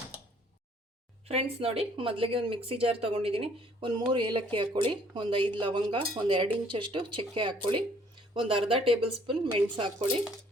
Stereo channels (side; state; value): both; normal; correlation 0.60